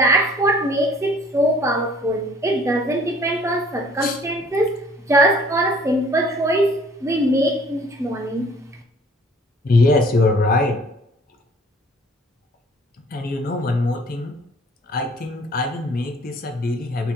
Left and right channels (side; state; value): both; normal; correlation 0.55